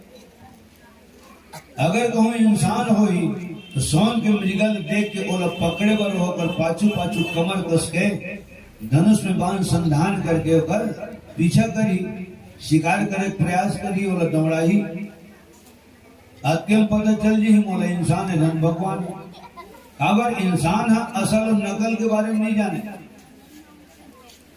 अगर कहूँ इंसान हो ही तो सोन के मृगल देख के ओला पकड़े बर होकर पाछू पाछू कमर कस के धनुष में बाण संधान करके ओकर पीछा करी, शिकार करे प्रयास करी, ओला दौड़ाही। अत्यंत पता चल जी मोला इंसान है धन भगवान। अगर इंसान है असल और नकल के बारे में नहीं जाने,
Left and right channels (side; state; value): both; identical; correlation 1.00